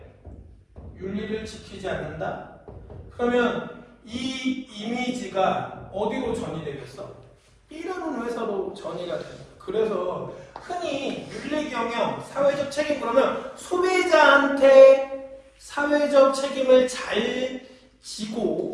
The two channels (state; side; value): identical; both; correlation 1.00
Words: 윤리를 지키지 않는다? 그러면 이 이미지가 어디로 전이 되겠어? B라는 회사로 전이가 됩니다. 그래서 흔히 윤리 경영, 사회적 책임, 그러면 소비자한테 사회적 책임을 잘